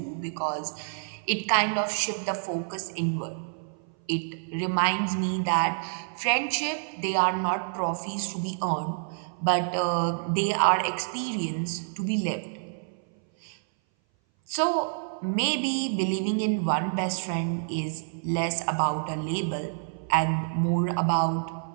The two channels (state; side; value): silent; left; 57 dB below the other